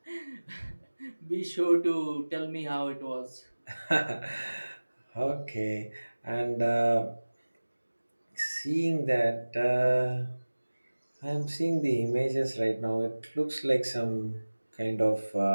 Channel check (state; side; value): inverted; both; correlation -1.00